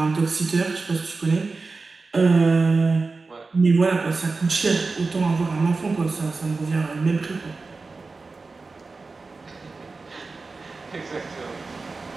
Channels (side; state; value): left; quieter; 3.9 dB